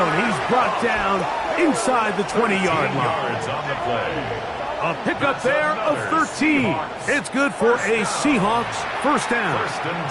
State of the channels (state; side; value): identical; both; correlation 1.00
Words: He's brought down inside the 20-yard line. A pickup there of 13. It's good for a Seahawks first down. 1st and